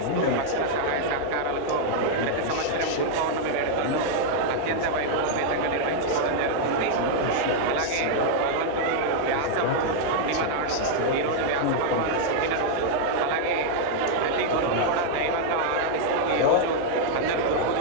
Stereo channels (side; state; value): both; different; correlation -0.01